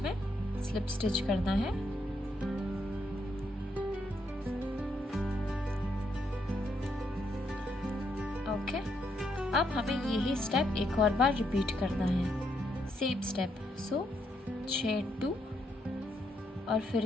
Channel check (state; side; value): normal; both; correlation 0.77